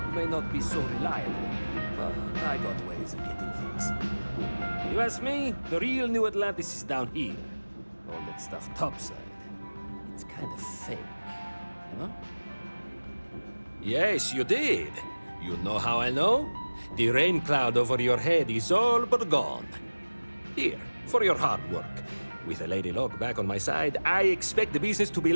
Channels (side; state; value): both; inverted; correlation -1.00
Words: may not be so reliable, but I got ways of getting things. You ask me, the real New Atlantis is down here. All that stuff topside. It's kind of fake, you know? Yes, you did. You know how I know? The rain cloud over your head is all but gone. Here, for your hard work. With a Lady Locke back on my side, I expect the business to be